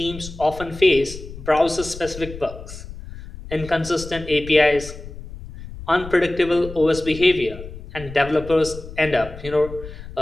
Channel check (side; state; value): left; noise; rumble, 13 dB below the sound